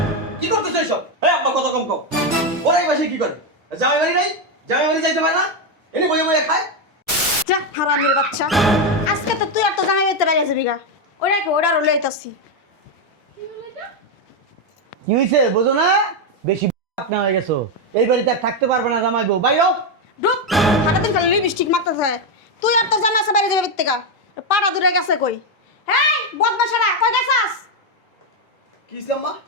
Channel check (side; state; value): both; normal; correlation 0.05